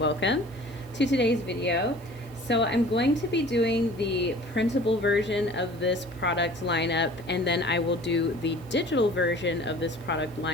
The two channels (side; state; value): right; noise; hiss, 26 dB below the sound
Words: to today's video. So I'm going to be doing the printable version of this product lineup, and then I will do the digital version of this product